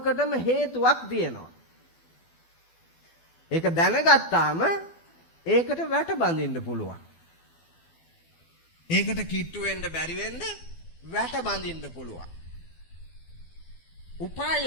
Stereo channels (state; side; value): late; right; 12 ms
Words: හේතුවක් තියෙනවා. ඒක දැනගත්තාම ඒකට වැට බඳින්න පුළුවන්. ඒකට කිට්ටු වෙන්න බැරි වෙන්න වැට බඳින්න පුළුවන්.